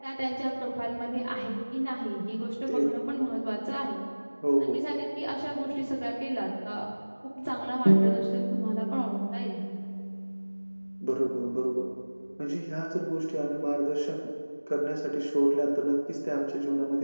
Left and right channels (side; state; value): both; inverted; correlation -1.00